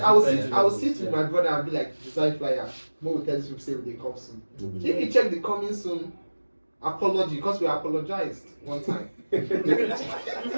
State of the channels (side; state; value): both; inverted; correlation -1.00